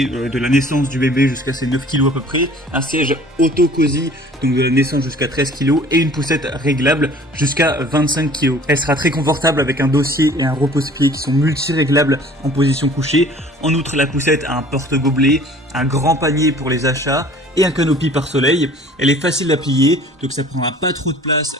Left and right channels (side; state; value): both; normal; correlation 0.50